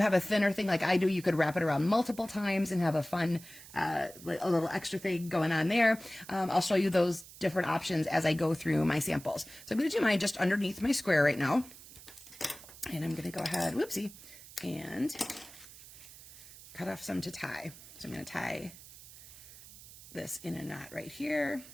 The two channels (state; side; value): noise; right; hiss, 18 dB below the sound